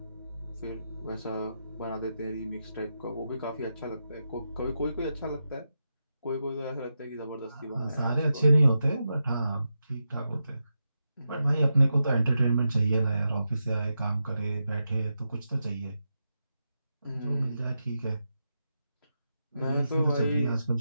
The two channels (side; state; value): both; inverted; correlation -0.87